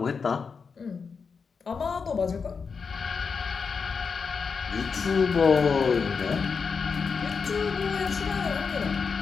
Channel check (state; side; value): quieter; right; 5.4 dB